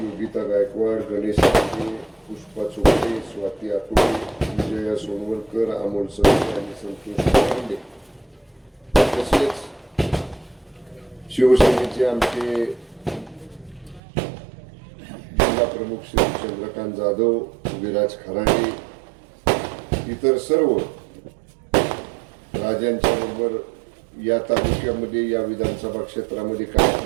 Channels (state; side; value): drops out; left; at 14.0 s